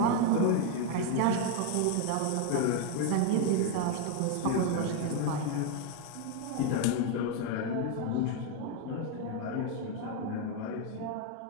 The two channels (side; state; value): both; different; correlation 0.01